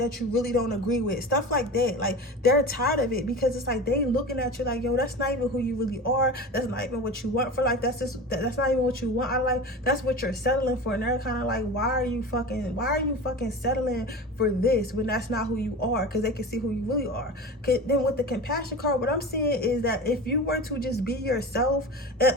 you really don't agree with, stuff like that. Like, they're tired of it, because it's like they looking at you like, yo, that's not even who you really are. That's not even what you want for life. That's not even what you want out of life. That's what you're settling for. And they're kind of like, why are you fucking settling for this when that's not who you are? Because they can see who you really are. Then with the compassion card, what I'm seeing is that if you were to just be yourself,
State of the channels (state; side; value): normal; both; correlation 0.31